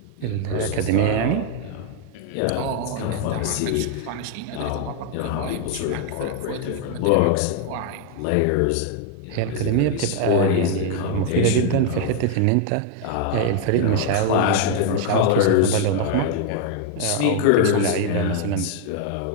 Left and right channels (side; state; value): both; different; correlation 0.00